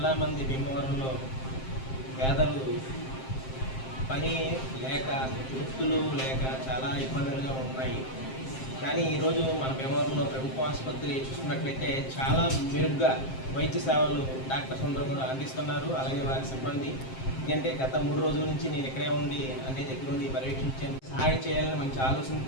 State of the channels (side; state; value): right; late; 7.6 ms